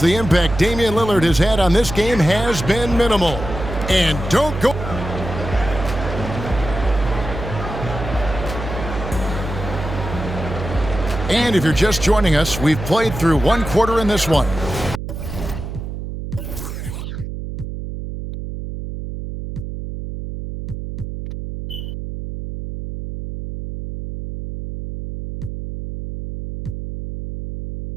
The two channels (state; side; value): noise; right; hum, 7 dB below the sound